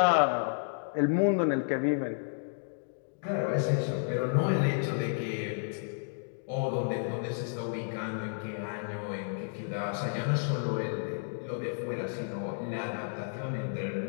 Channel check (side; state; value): right; silent; digital silence